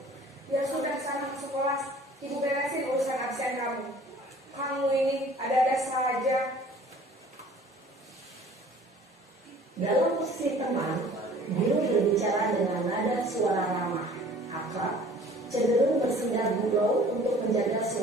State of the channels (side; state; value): both; normal; correlation 0.50